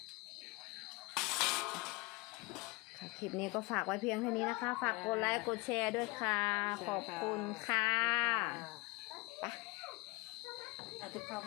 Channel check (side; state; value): right; quieter; 24.3 dB